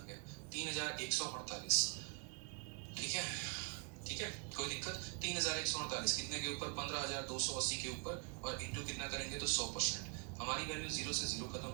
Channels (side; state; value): left; quieter; 36.0 dB